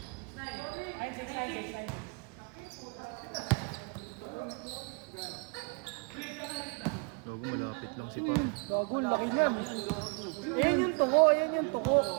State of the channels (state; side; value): quieter; left; 34.1 dB